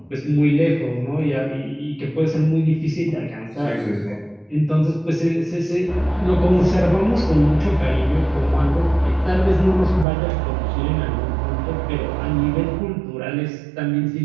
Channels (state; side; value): drops out; left; at 10.1 s